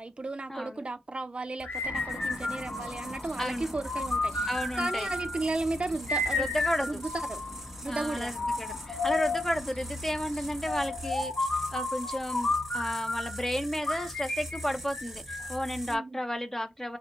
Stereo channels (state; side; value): normal; both; correlation 0.85